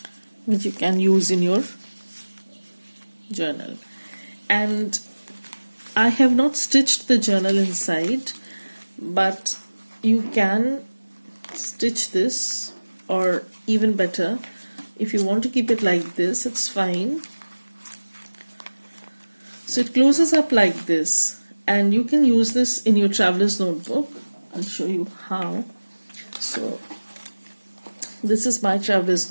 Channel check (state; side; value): inverted; both; correlation -1.00